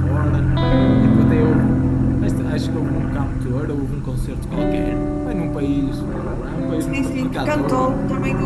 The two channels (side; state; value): both; identical; correlation 1.00